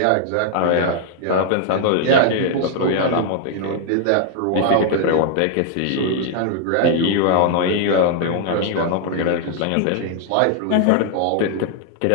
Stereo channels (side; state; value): both; different; correlation 0.00